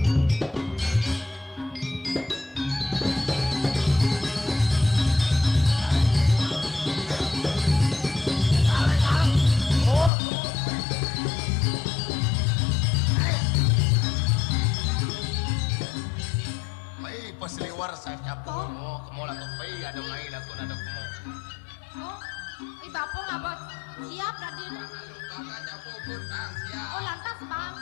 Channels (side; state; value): right; drops out; at 10.1 s